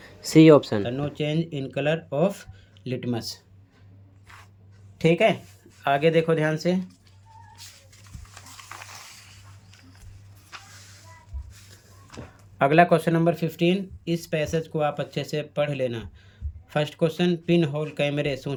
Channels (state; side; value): identical; both; correlation 1.00